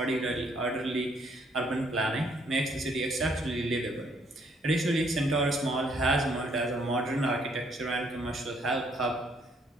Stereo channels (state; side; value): normal; both; correlation 0.68